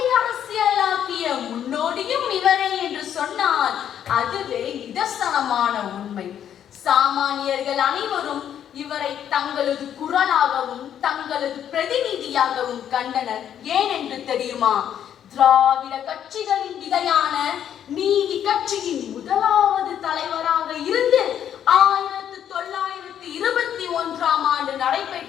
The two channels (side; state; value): right; quieter; 9.7 dB